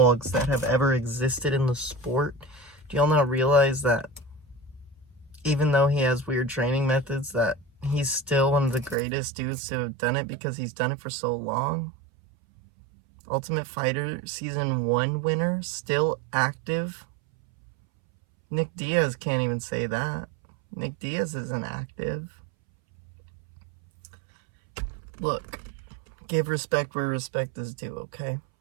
that have ever existed in the sport? Do y'all not realize that even though he has weird training methods, that he's still one of the greatest dudes to have done it because he's done it for so long? Ultimate Fighter Season 1 winner, still active. Nick Diaz can't even say that. Nick Diaz isn't active. Look, give respect where respect is due, okay?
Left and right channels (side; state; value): left; drops out; at 9.0 s